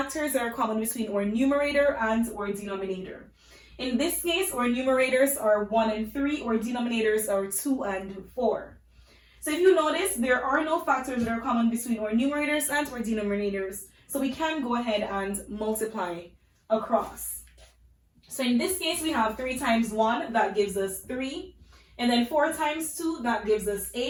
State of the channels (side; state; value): both; identical; correlation 1.00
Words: that are common between our numerator and our denominator. In this case, our numerators are 1 and 3, our denominators are 2 and 4. So if you notice, there are no factors that are common between our numerators and our denominators, so we can go ahead and multiply across. So in this case, we have 3 times 1, that gives us 3. And then 4 times 2, that gives us